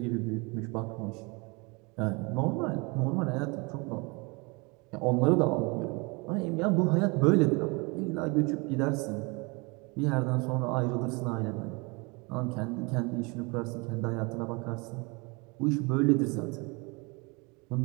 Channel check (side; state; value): left; quieter; 28.5 dB